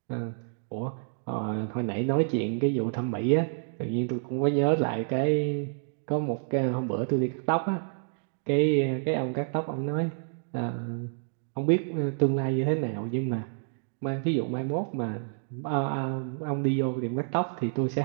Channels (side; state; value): left; silent; digital silence